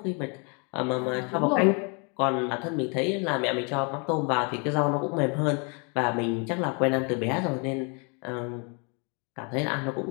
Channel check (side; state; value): right; quieter; 34.5 dB